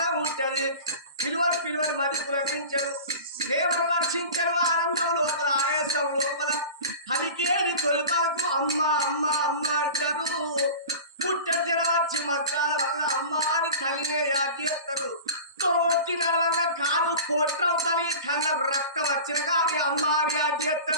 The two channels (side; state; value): both; inverted; correlation -0.36